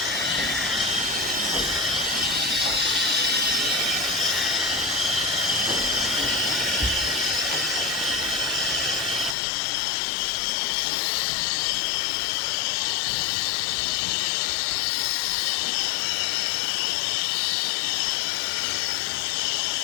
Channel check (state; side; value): drops out; right; at 9.3 s